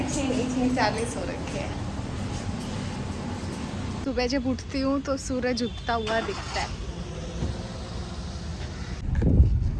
नहीं 6:40 हो रखे हैं। सुबह जब उठती हूँ तो सूरज उगता हुआ दिखता है।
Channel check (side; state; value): both; identical; correlation 1.00